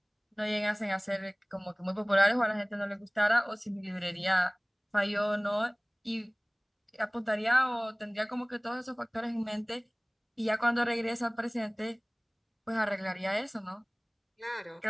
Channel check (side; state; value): both; identical; correlation 1.00